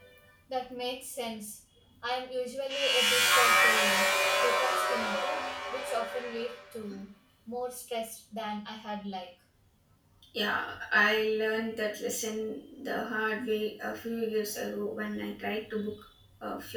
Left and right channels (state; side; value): identical; both; correlation 1.00